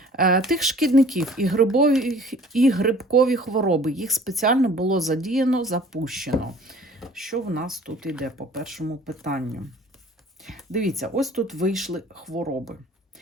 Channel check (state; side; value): normal; both; correlation 0.50